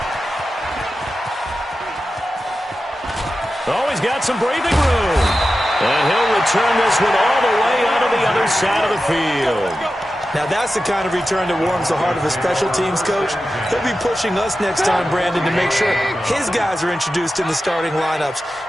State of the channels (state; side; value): normal; both; correlation 0.92